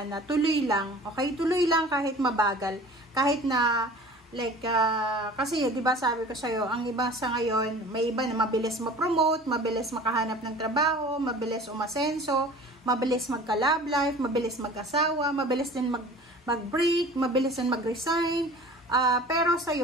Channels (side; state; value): both; normal; correlation 0.43